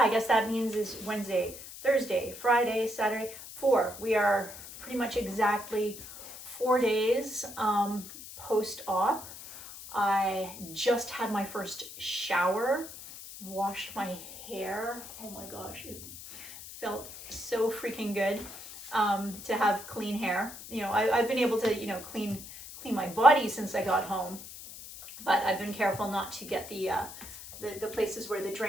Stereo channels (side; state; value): left; noise; hiss, 13 dB below the sound